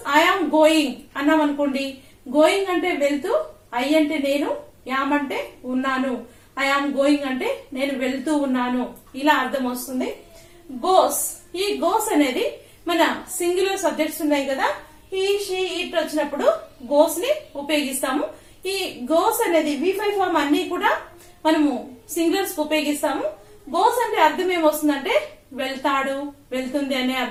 ఐ ఆమ్ గోయింగ్ అన్నాం అనుకోండి, గోయింగ్ అంటే వెళ్తూ, ఐ అంటే నేను, యామ్ అంటే ఉన్నాను, ఐ ఆమ్ గోయింగ్ అంటే నేను వెళ్తూ ఉన్నాను, ఇలా అర్థం వస్తుంది. గోస్. ఈ గోస్ అనేది మన సింగులర్ సబ్జెక్ట్స్ ఉన్నాయి కదా, హీ షీ ఇట్ వచ్చినప్పుడు గోస్ ని ఉపయోగిస్తాము. ఈ గోస్ అనేది V5 ఫామ్ అన్ని కూడా మనము సింగులర్స్ ఉపయోగిస్తాము. గోస్ అంటే అర్థం ఏమొస్తుందంటే వెళ్తాడు, వెళ్తుంది అనే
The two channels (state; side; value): identical; both; correlation 1.00